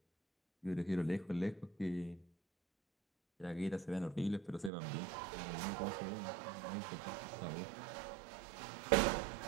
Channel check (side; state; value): left; drops out; at 4.7 s